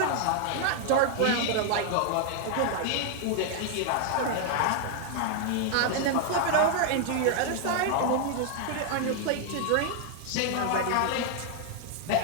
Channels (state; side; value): different; both; correlation 0.00